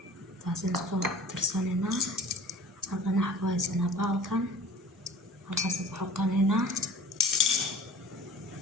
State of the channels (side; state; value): both; normal; correlation 0.44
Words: taasoo isku tirsanayna halkan waxaan ku haysanaa baalkan halkaas ku xoqanayna